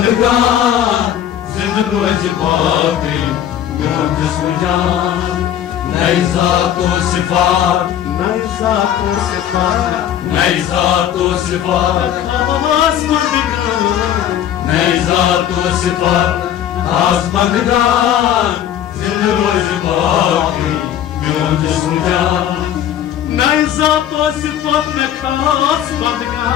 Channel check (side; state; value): right; quieter; 10.5 dB